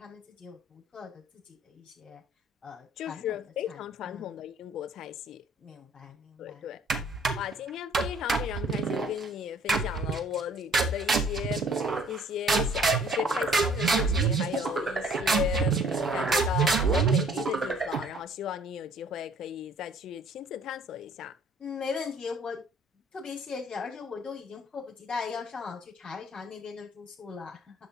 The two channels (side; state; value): both; normal; correlation 0.57